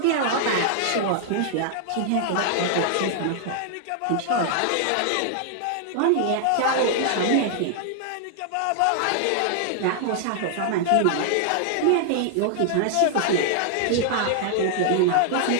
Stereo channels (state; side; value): different; both; correlation -0.01